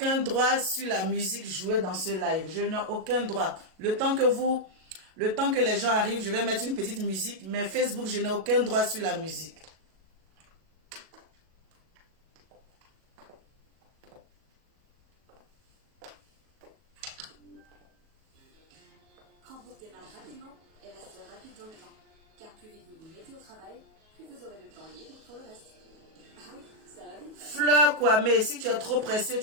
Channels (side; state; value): left; late; 37 ms